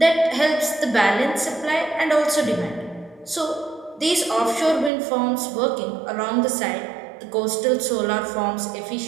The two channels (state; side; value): drops out; left; at 4.9 s